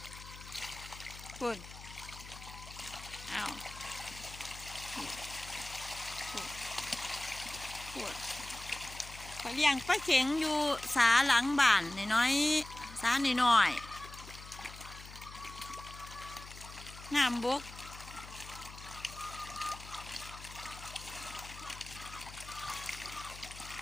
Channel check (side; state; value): left; noise; hum, 15 dB below the sound